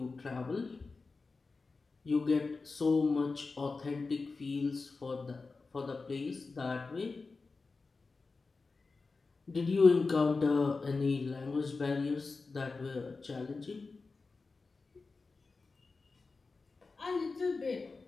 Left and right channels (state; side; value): quieter; right; 4.0 dB